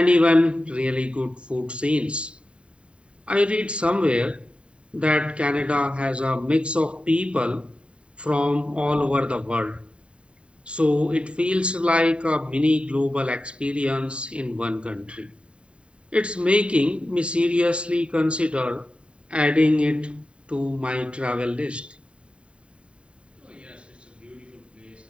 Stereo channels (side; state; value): left; late; 0.057 ms